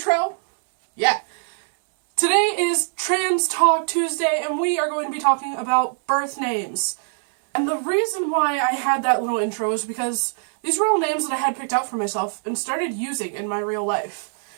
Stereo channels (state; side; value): silent; left; digital silence